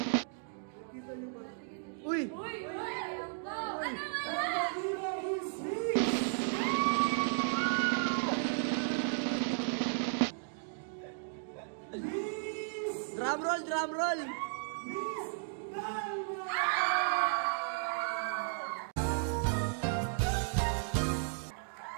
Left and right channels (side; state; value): left; silent; digital silence